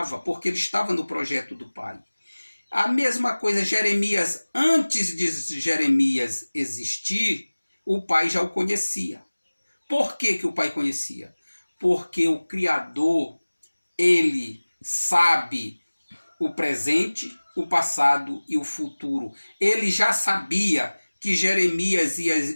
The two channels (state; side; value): inverted; both; correlation -1.00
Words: porque ele estava no projeto do pai. A mesma coisa, Jeremias, antes de Jeremias existir, o pai já o conhecia. Por que o pai conhecia? Porque o Criador, ele sabe o presente, o passado e o futuro. Ele já sabia que Jeremias ia